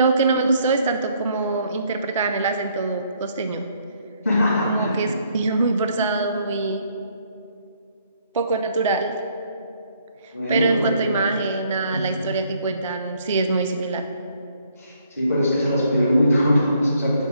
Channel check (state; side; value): inverted; both; correlation -0.68